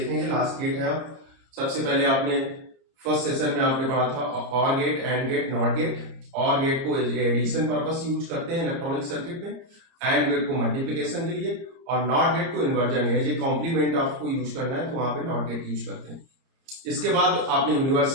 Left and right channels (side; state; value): left; late; 30 ms